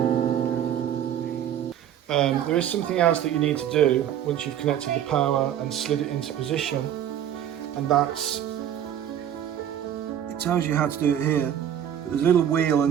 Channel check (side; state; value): left; quieter; 10.2 dB